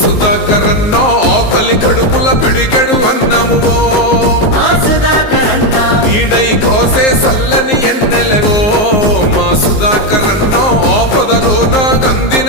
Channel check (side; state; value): right; late; 19 ms